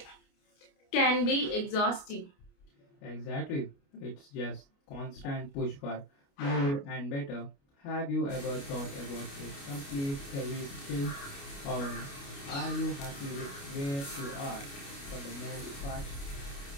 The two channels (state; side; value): late; right; 29 ms